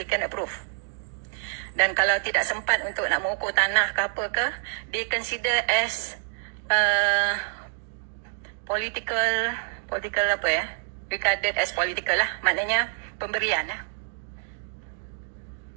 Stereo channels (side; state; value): left; silent; digital silence